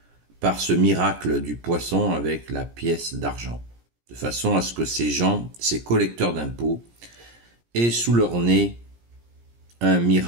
par ce miracle du poisson avec la pièce d'argent, de façon à ce que ces gens, ces collecteurs d'impôts, aient sous leur nez un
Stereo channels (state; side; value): late; left; 17 ms